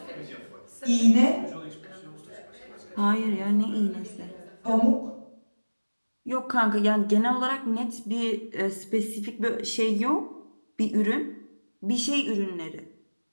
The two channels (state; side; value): inverted; both; correlation -1.00